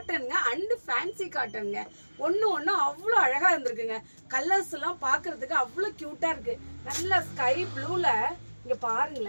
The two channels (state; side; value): inverted; both; correlation -1.00